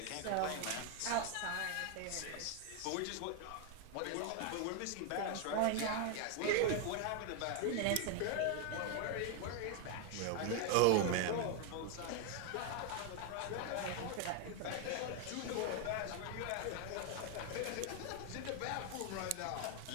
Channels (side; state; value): both; different; correlation 0.01